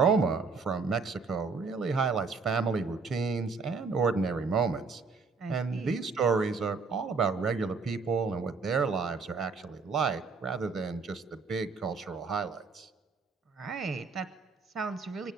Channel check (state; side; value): quieter; left; 4.7 dB